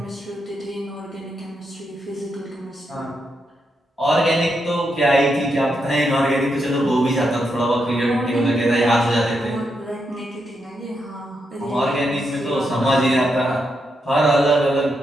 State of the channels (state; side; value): normal; both; correlation 0.82